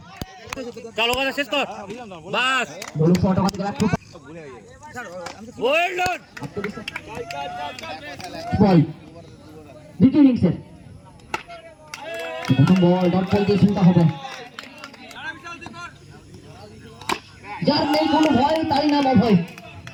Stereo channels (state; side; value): identical; both; correlation 1.00